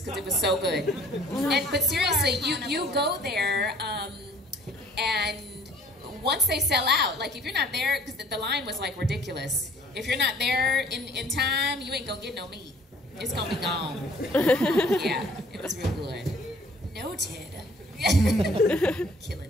because it was so good. But seriously, you go there and once they sell out, like if you're not there, because the line was like ridiculous. If you're not there in time, you ain't gonna get no meat. It's gonna be gone. Yeah, it was real good. Noted.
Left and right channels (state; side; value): normal; both; correlation 0.55